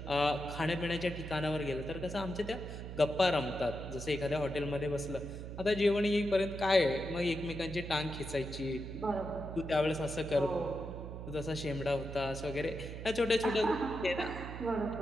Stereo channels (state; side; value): noise; right; hum, 8 dB below the sound